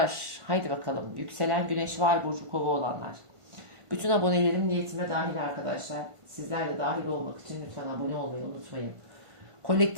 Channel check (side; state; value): left; late; 1.5 ms